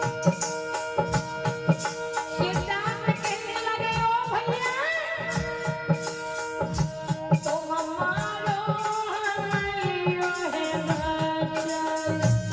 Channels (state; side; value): noise; right; rumble, 29 dB below the sound